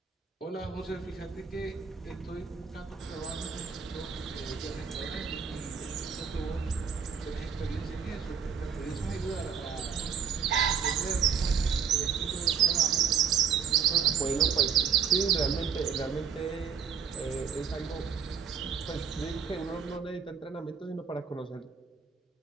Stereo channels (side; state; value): left; quieter; 6.9 dB